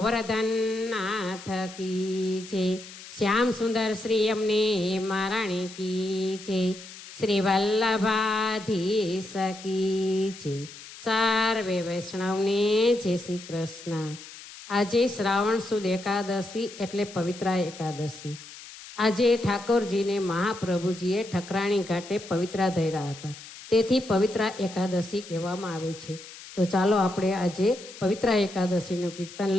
નાથ કી છે, શ્યામ સુંદર શ્રી અમને મહારાણી કી છે, શ્રી વલ્લભાધીશ કી છે, સર્વે વૈષ્ણવને જય શ્રી કૃષ્ણ। આજે શ્રાવણ સુદ એકાદશી એટલે પવિત્ર એકાદશી। આજે ઠાકોરજીને મહાપ્રભુજીએ ઠકરાણી ઘાટે પવિત્ર ધર્યા હતા, તેથી પવિત્ર એકાદશી કહેવામાં આવે છે। તો ચાલો આપણે આજે પવિત્ર એકાદશીનું કીર્તન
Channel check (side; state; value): left; noise; hiss, 16 dB below the sound